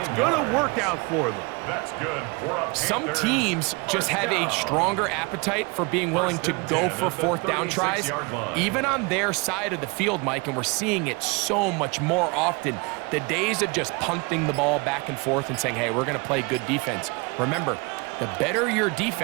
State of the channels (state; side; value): quieter; left; 29.1 dB